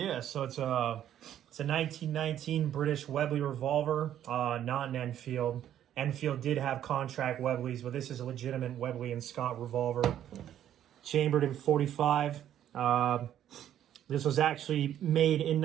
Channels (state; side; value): quieter; left; 10.9 dB